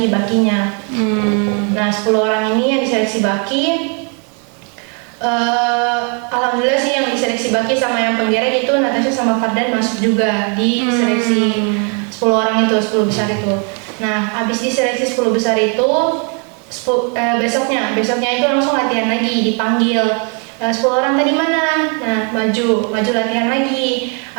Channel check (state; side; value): quieter; left; 37.9 dB